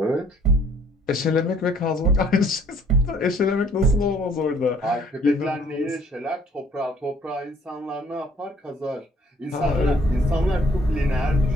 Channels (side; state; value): both; normal; correlation 0.60